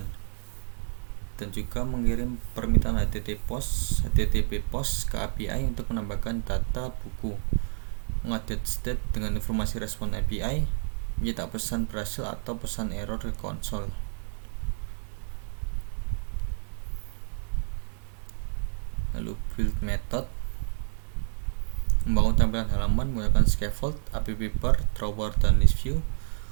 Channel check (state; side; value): silent; left; 59 dB below the other